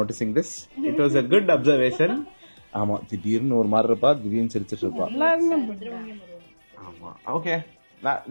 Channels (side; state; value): both; inverted; correlation -1.00